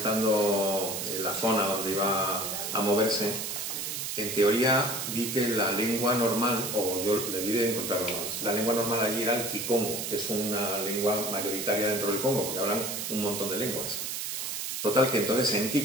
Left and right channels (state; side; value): noise; right; hiss, 4 dB below the sound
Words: la zona donde iba a moverse, en teoría vi que la lengua normal, o yo debí de encontrarlo más, la lengua normal allí era el kikongo, que es una lengua mayoritaria dentro del Congo, porque hablan un montón de lenguas. Total, que entonces en